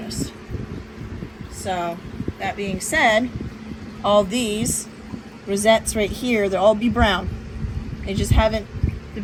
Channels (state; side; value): identical; both; correlation 1.00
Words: So that being said, all these rosettes right here, they'll all be brown. They just haven't